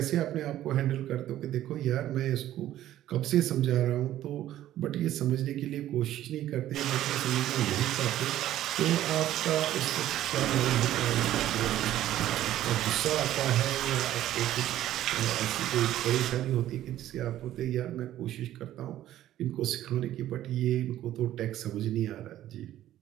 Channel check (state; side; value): quieter; left; 13.1 dB